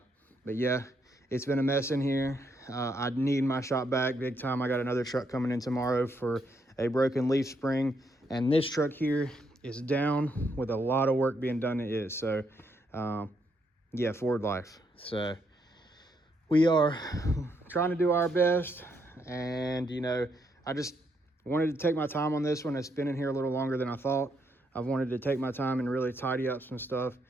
yeah, it's been a mess in here. I need my shop back big time. I got another truck coming in tomorrow for a broken leaf spring, and this truck here is down with a lot of work being done. It is. So yeah, Ford life. So we are trying to do our best, and I just wanted to take my time on this one. It's been in here a little longer than I thought. I've wanted to take my time and really tidy up some stuff,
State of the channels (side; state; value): both; normal; correlation 0.76